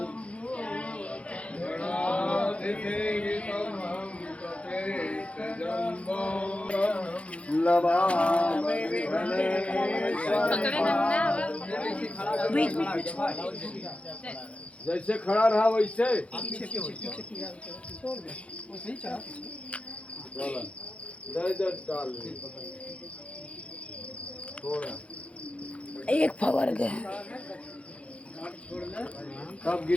जैसे खड़ा रहा वैसे डाल थोड़ा एक फवर गए कब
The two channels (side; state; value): right; late; 0.062 ms